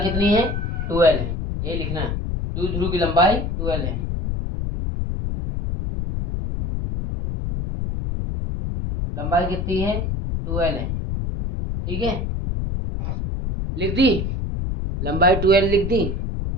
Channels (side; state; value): left; noise; rumble, 2 dB below the sound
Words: कितनी है, 12 है, ये लिखना है। द्विध्रुव की लंबाई 12 है। लंबाई कितनी है, 12 है। ठीक है, लिख दी, लंबाई 12 लिख दी।